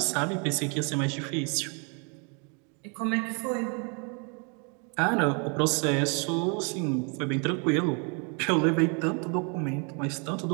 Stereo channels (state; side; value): quieter; left; 36.2 dB